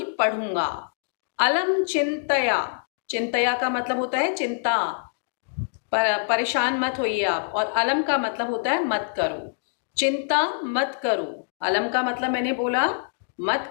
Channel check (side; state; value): right; silent; digital silence